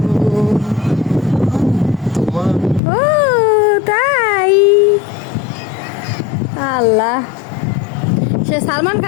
তোমার। ও তাই আল্লাহ, সে সালমান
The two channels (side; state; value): right; drops out; at 2.8 s